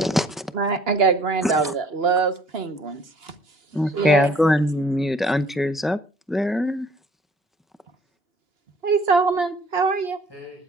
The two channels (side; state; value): both; normal; correlation 0.56